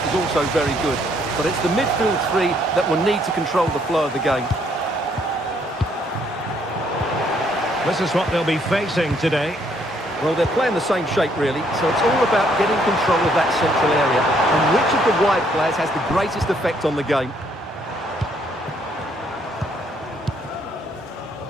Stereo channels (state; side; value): normal; both; correlation 0.68